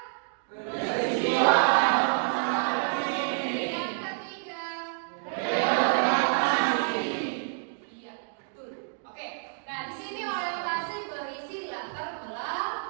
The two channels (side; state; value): left; silent; 59 dB below the other